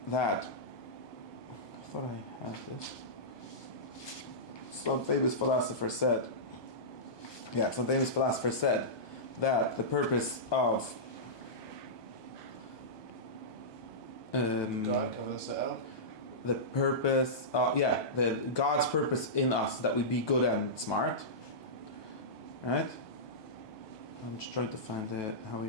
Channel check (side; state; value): right; late; 1.2 ms